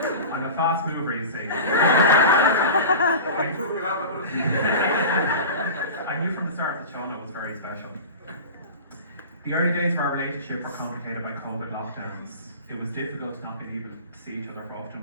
I'm a fast mover, you see. I knew from the start that Shauna was very special. The early days of our relationship were complicated by COVID lockdowns. It was difficult not being able to see each other for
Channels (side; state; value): both; inverted; correlation -0.33